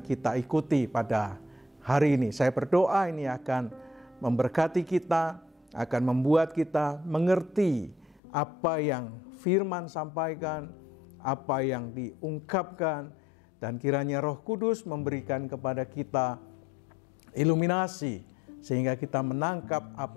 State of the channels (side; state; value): right; drops out; at 8.2 s